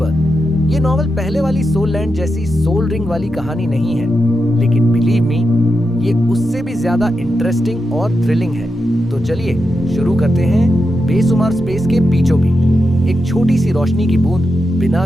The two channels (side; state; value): both; normal; correlation 0.87